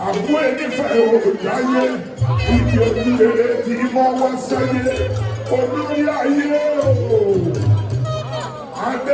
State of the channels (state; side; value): identical; both; correlation 1.00